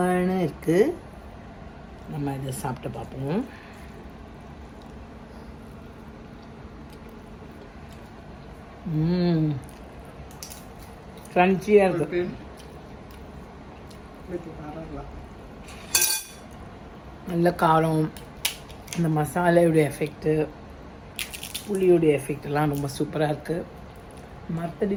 இருக்குது. நம்ம இதை சாப்பிட்டு பார்ப்போம். க்ரன்ச்சியாக இருக்குது. நல்ல காரம், இந்த மசாலையுடைய எஃபெக்ட்டு, புளியுடைய எஃபெக்டெல்லாம் ரொம்ப சூப்பராக இருக்குது.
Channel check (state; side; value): identical; both; correlation 1.00